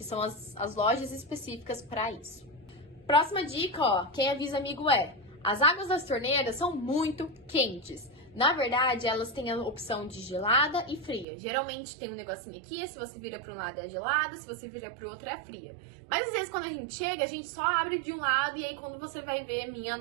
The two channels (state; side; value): drops out; left; at 11.2 s